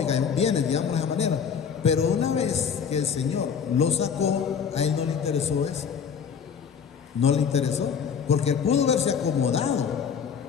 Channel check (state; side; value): quieter; right; 6.9 dB